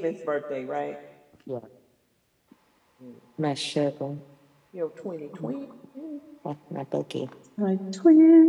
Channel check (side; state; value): both; identical; correlation 1.00